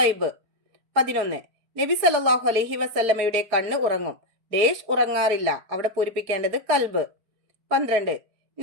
ഐബ്. 11. നബി സല്ലല്ലാഹു അലൈഹി വസല്ലമയുടെ കണ്ണ് ഉറങ്ങും, ഡേഷ് ഉറങ്ങാറില്ല. അവിടെ പൂരിപ്പിക്കേണ്ടത് കൽബ്. 12.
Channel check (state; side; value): late; left; 4.7 ms